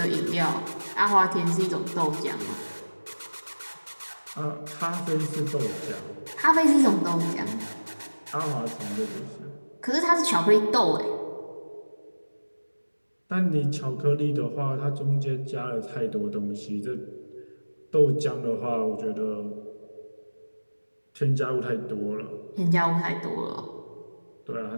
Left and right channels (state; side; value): inverted; both; correlation -1.00